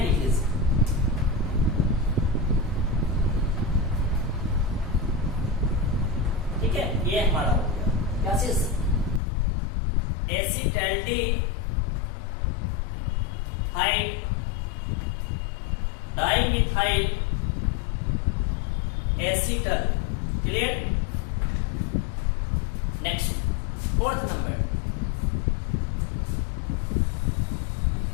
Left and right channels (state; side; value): drops out; right; at 9.2 s